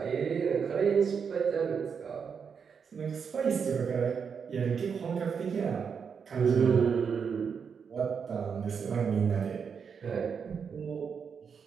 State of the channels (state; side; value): quieter; left; 6.4 dB